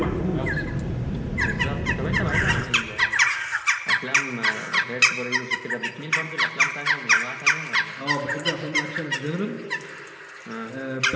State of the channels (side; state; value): both; identical; correlation 1.00